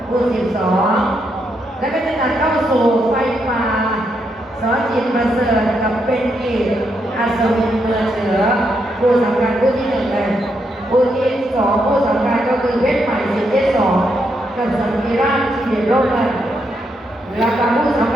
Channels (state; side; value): normal; both; correlation 0.79